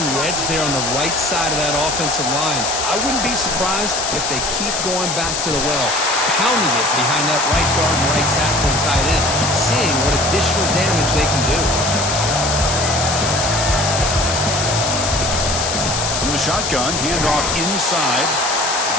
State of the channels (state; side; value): noise; left; hiss, 2 dB below the sound